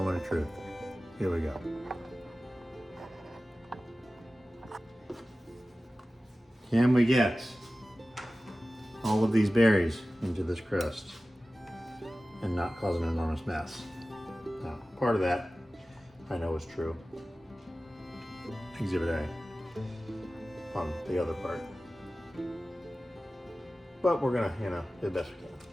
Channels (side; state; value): both; normal; correlation 0.96